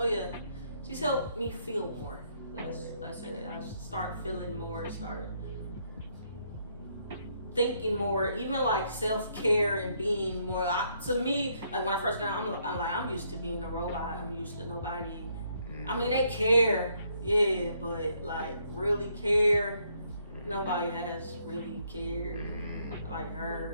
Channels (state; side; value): inverted; both; correlation -0.71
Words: yeah. She's helped me feel more. That's it. I start feeling more, start thinking more, even like self-care and being more. To me, like when I first got out, I'm used to being a robot. I'm used to nobody. I mean, they care, yeah, but like really care, nobody has really cared like